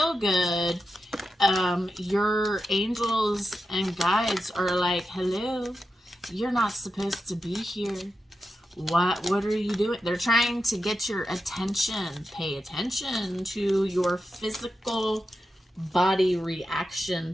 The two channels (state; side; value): normal; both; correlation 0.89